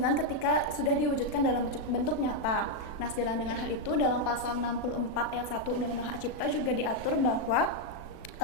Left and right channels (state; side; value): late; right; 37 ms